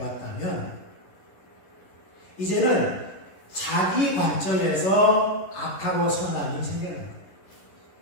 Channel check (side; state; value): right; late; 11 ms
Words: 이제는 자기 관점에서 악하고 선함이 생겨난 거예요.